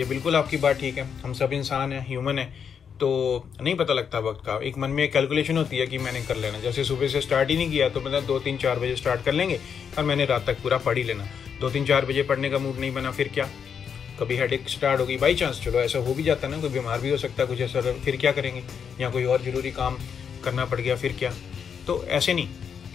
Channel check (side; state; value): right; quieter; 7.1 dB